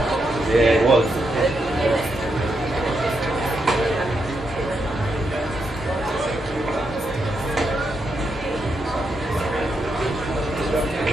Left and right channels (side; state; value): both; normal; correlation 0.82